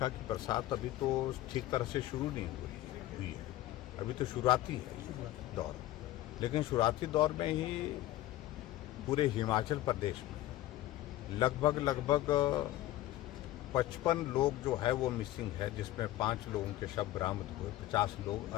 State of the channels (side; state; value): right; quieter; 15.3 dB